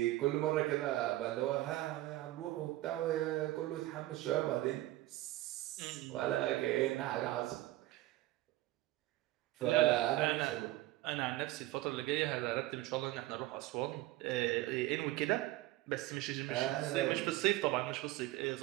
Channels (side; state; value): left; quieter; 16.9 dB